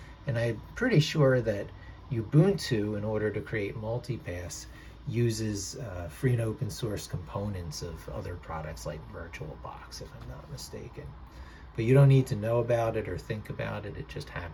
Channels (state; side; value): identical; both; correlation 1.00